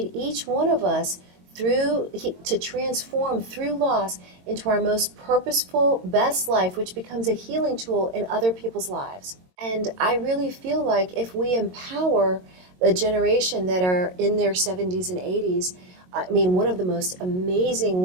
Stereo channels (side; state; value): left; late; 22 ms